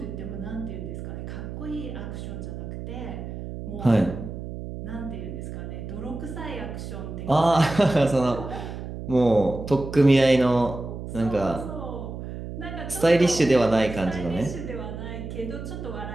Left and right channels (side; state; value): right; noise; hum, 8 dB below the sound